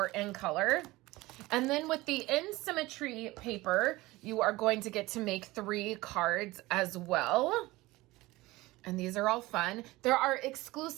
In Color. And then with the In Symmetry paper, you are going to get to make 3 cards as well. And these are all fun. There are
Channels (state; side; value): quieter; left; 19.8 dB